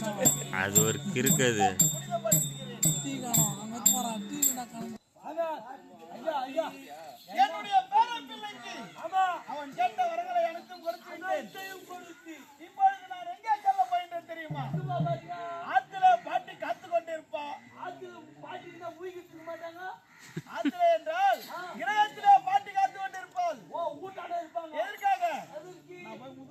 அது ஒரு கிறுக்கது. என்னுடைய பேரப்பிள்ளைக்கு அவன் கேட்ட வரங்களை அனைத்தும் கொடுத்து இப்பொழுது நான் எங்கே செல்ல போகின்றேன் தெரியுமா? ஆத்துல பாட்டி காத்து கொண்டிருப்பா. பாட்டிக்கு ஊகிக்க மாட்டாங்க. ஆத்துல என்றால் கிரகத்திலே பாட்டி காத்து கொண்டிருப்பாள். ஊட்டாட இருப்பாங்க. எதற்காக? நான் போய்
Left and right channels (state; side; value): identical; both; correlation 1.00